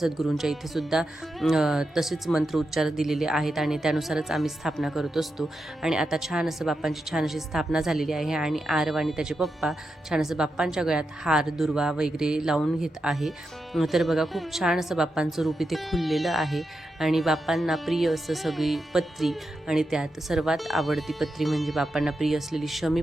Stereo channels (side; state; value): both; normal; correlation 0.87